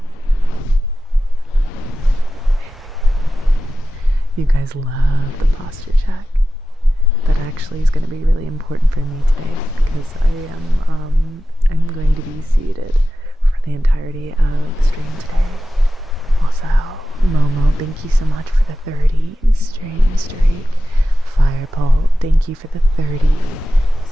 You guys love the posture check. That actually is going to be really important for me today because I'm going to be seated for the entirety of the stream today. Also, Momo, thank you so much for the 30 stream streak. Firepole, thank you for the 30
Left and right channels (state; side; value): normal; both; correlation 0.93